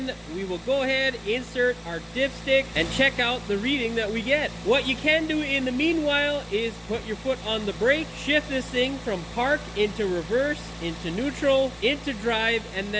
we will go ahead, insert our dipstick, and check out the reading that we get. What you can do in the meanwhile is put your foot on the brake, shift this thing from park into reverse, into neutral, into drive, and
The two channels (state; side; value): identical; both; correlation 1.00